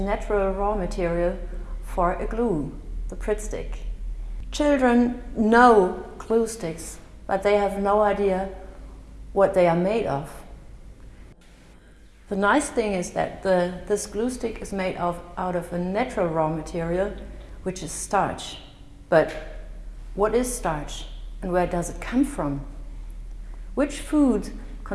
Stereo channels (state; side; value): identical; both; correlation 1.00